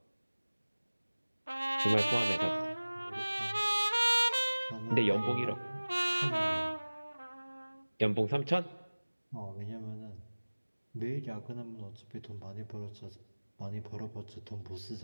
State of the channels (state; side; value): inverted; both; correlation -1.00